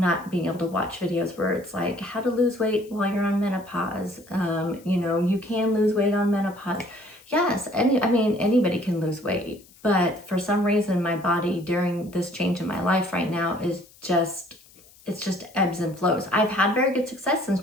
being able to watch videos where it's like how to lose weight while you're on menopause. You know, you can lose weight on menopause. Yes, anybody can lose weight. But for some reason, my body during this change in my life right now is just ebbs and flows. I've had very good success since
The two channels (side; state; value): left; noise; hiss, 26 dB below the sound